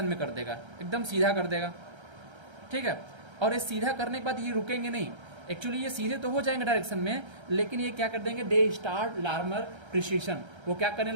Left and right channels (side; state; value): left; late; 1.3 ms